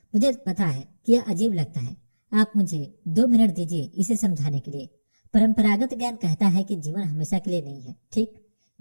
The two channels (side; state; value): both; inverted; correlation -1.00